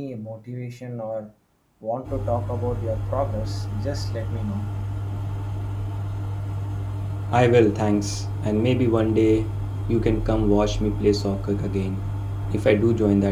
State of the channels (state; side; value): identical; both; correlation 1.00